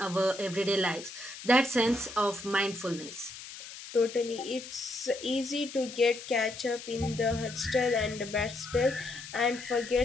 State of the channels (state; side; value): noise; left; hiss, 13 dB below the sound